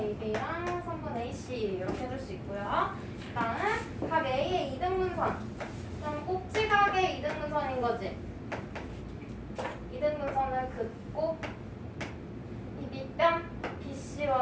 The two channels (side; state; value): both; identical; correlation 1.00